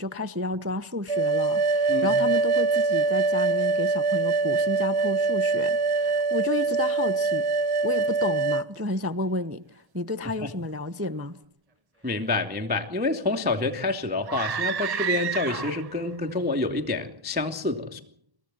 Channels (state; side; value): late; left; 1.1 ms